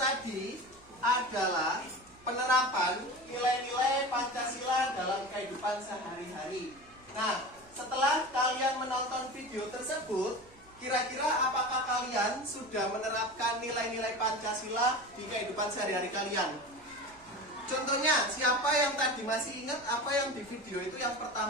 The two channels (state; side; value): noise; right; hum, 27 dB below the sound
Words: adalah penerapan nilai-nilai Pancasila dalam kehidupan sehari-hari. Nah, setelah kalian menonton video tersebut, kira-kira apakah kalian sudah menerapkan nilai-nilai Pancasila di kehidupan sehari-hari kalian? Contohnya, siapa yang tadi masih ingat apa yang di video itu yang